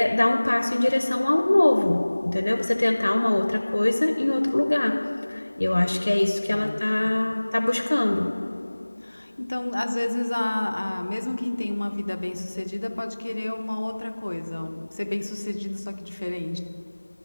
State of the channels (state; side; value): inverted; both; correlation -1.00